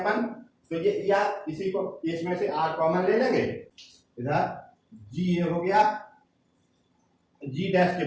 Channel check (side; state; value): both; identical; correlation 1.00